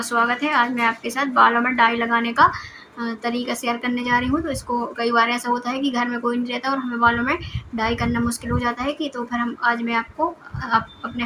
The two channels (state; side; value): identical; both; correlation 1.00